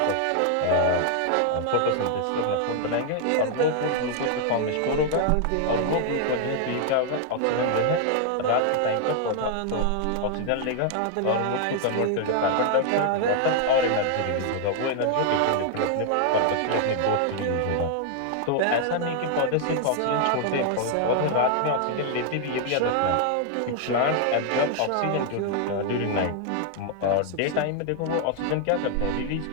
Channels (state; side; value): different; both; correlation 0.00